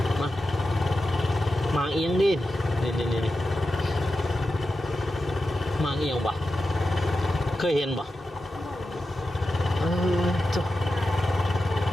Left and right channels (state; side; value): normal; both; correlation 0.91